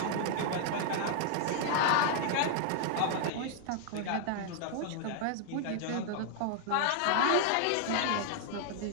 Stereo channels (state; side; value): different; both; correlation 0.00